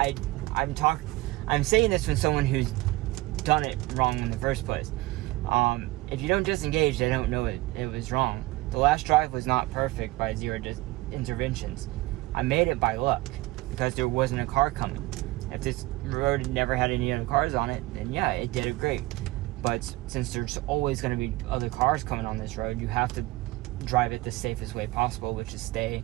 saying this from someone who's done it wrong in the first place. If you don't disengage, they don't know it was wrong. The last drive was not perfect by 0 interventions. I made it by luck because there wasn't a car coming. If this road never had any other cars on it, then yeah, it did it great. But since there's always going to be other cars coming on this road, you have to drive it the safest way possible, which is stay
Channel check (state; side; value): quieter; left; 19.6 dB